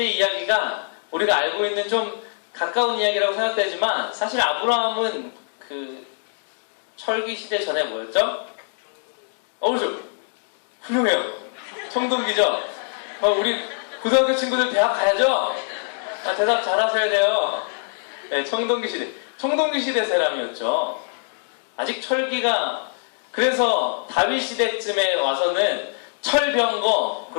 이야기가 우리가 알고 있는 좀 가까운 이야기라고 생각되지만, 사실 아브라함은 그 철기 시대 전에 뭐였죠? 그렇죠. 훌륭해요. 청동기죠? 우리 고등학교 친구들 대학 가야죠? 대답 잘하셔야 돼요. 네, 청동기 시대. 청동기 시대 사람이었죠. 아직 철기가, 그래서 다윗 시대쯤에 와서는 철병거,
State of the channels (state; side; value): silent; right; 63 dB below the other